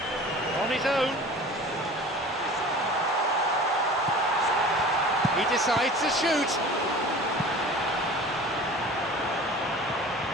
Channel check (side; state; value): both; normal; correlation 0.40